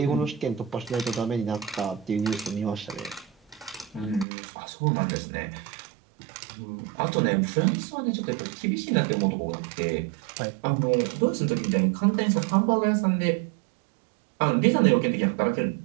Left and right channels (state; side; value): drops out; left; at 4.2 s